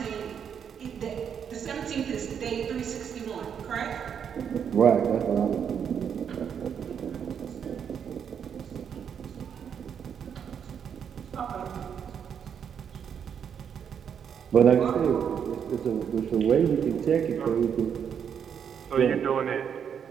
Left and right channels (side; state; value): left; quieter; 7.8 dB